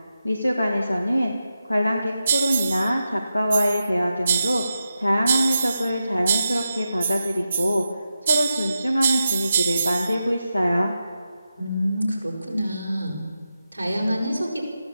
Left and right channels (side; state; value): both; inverted; correlation -0.89